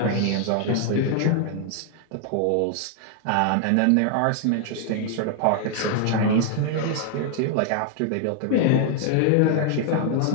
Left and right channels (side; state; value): both; different; correlation 0.00